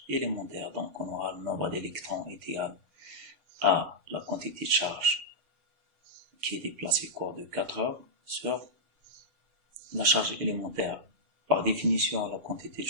élémentaire. Donc, on aura le nombre d'électrons est égal à la quantité de charge qui est déplacée au cours de 4 heures sur la charge élémentaire. Par définition, la quantité de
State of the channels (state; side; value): late; left; 7.0 ms